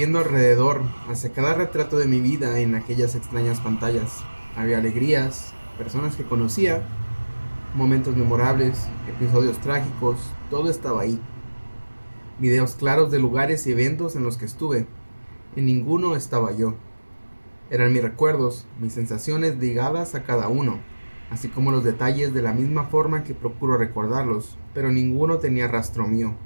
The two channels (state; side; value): inverted; both; correlation -1.00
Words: alrededor, hacia cada retrato de mi vida en aquellas extrañas pantallas. Había alegrías, personas que conocía, momentos memorables, episodios trágicos, todo estaba ahí. Videos claros de lugares y eventos en los que estuve. En ninguno estaba yo. Eran mis recuerdos, mis sensaciones ligadas a cada uno, así como los detalles de la misma forma que procuro recordarlos, pero ninguno tenía rastro mío,